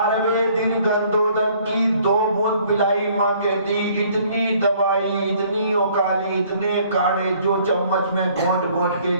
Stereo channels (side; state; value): both; inverted; correlation -0.59